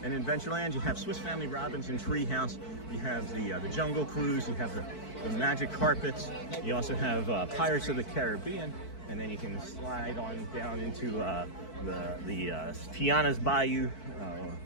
In Adventureland, you have Swiss Family Robinson Treehouse, you have the Jungle Cruise, you have the Magic Carpets, you also have Pirates of the Caribbean, and then you can slide on down into the Tiana's Bayou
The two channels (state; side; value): late; right; 4.6 ms